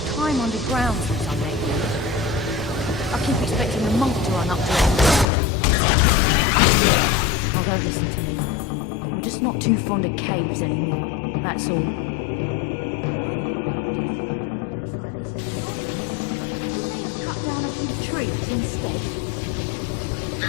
time underground since I met you. I keep expecting the monk to run up to it. Now don't listen to me. I'm just not too fond of caves anymore, that's all. Why the road has to go through a place like this is beyond me. Couldn't they have cut down a few trees instead?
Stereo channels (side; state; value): right; drops out; at 5.2 s